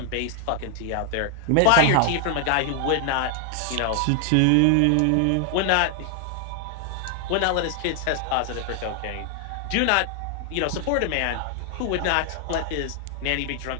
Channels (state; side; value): different; both; correlation 0.00